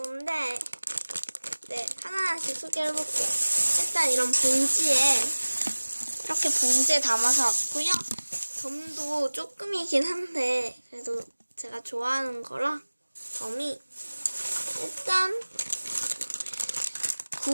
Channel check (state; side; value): inverted; both; correlation -1.00